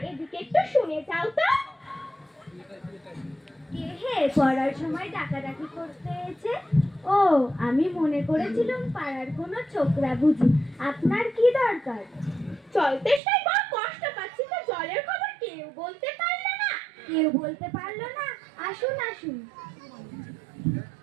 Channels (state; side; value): drops out; left; at 13.2 s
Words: এদিকে একটু শুনে যাও তো। কে হে পড়ার সময় ডাকাডাকি করতে এসে? ও, আমি মনে করেছিলাম পাড়ার কোনো ছোকরা বুঝি। আপনার কি দরকার? জল তেষ্টায় বড় কষ্ট পাচ্ছি, তো জলের খবর কেউ বলতে পারলো না। কেউ বলতে পারলো না? আসুন আসুন।